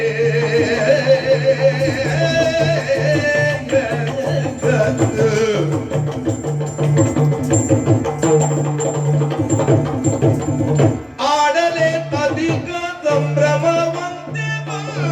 ಆಡಲೆ ಅಧಿಕ ಸಂಭ್ರಮವಂತೆ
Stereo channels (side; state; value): both; identical; correlation 1.00